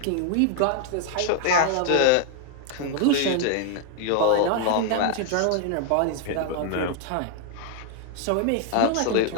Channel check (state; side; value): different; both; correlation 0.00